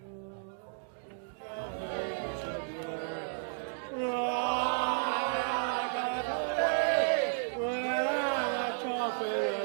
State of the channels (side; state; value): left; silent; digital silence